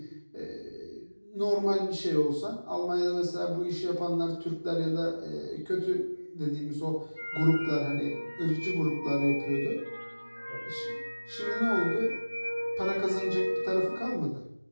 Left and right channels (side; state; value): both; inverted; correlation -1.00